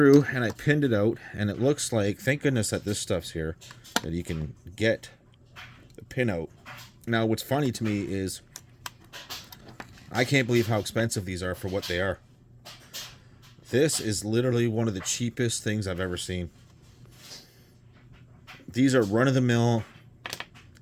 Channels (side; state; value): both; identical; correlation 1.00